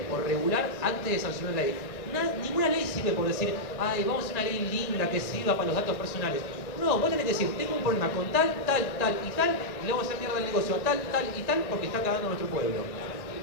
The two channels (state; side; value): late; right; 1.6 ms